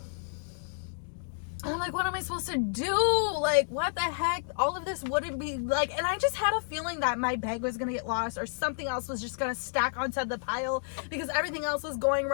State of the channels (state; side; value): silent; right; digital silence